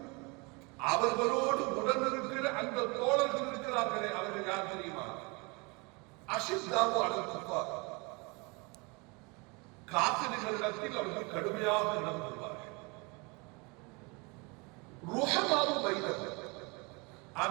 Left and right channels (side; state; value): left; quieter; 29.0 dB